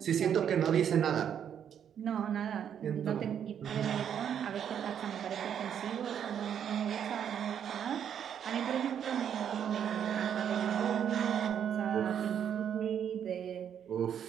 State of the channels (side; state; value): left; quieter; 8.8 dB